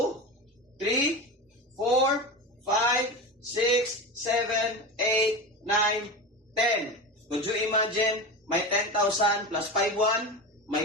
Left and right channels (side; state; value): both; normal; correlation 0.24